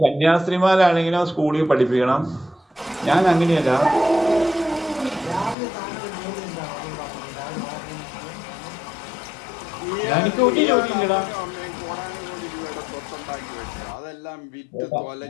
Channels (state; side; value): drops out; right; at 5.6 s